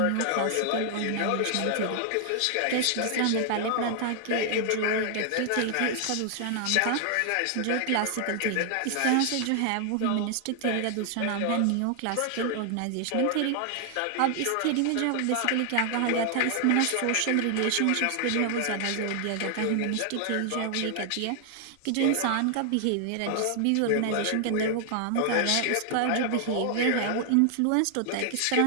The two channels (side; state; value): both; different; correlation 0.00